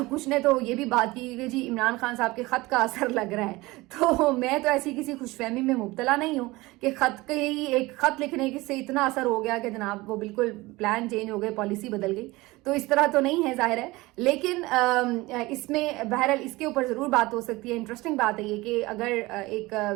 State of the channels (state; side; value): quieter; left; 21.0 dB